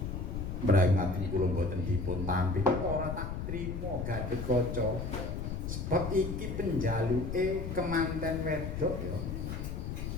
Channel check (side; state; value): left; noise; rumble, 4 dB below the sound